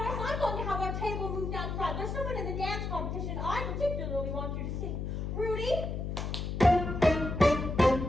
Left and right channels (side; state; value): left; noise; hum, 3 dB below the sound